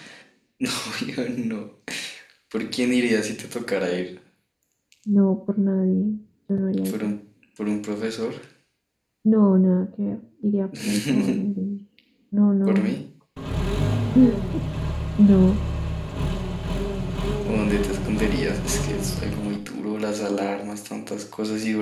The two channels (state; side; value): identical; both; correlation 1.00